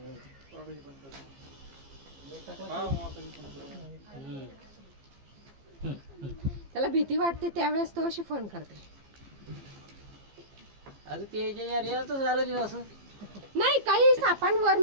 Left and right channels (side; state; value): left; late; 15 ms